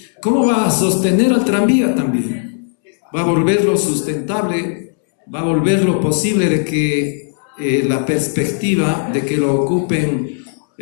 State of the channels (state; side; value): silent; right; 69 dB below the other